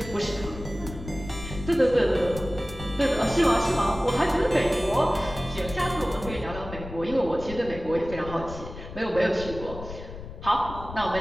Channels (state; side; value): noise; left; rumble, 12 dB below the sound